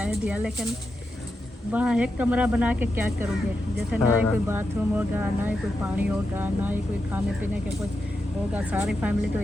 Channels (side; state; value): both; normal; correlation 0.87